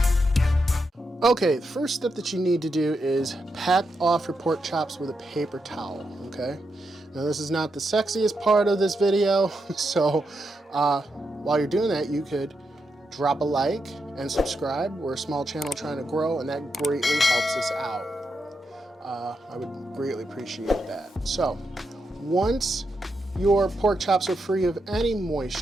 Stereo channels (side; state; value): both; normal; correlation 0.84